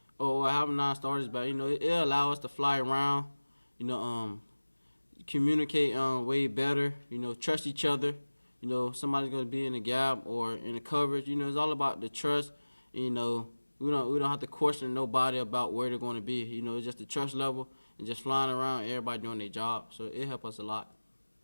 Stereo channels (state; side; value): inverted; both; correlation -1.00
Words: Oh, having 9 starters back, it'll allow us to fly around, communicate way better, trust each other. Somebody's gonna be in the gap or in the coverage. It's all about the trust. We don't have to question nobody about where they're going to be. It's just the trust level and just flying around, everybody doing their job. So it helps us a lot.